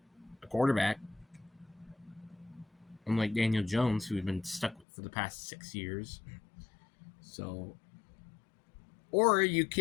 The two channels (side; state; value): right; drops out; at 4.9 s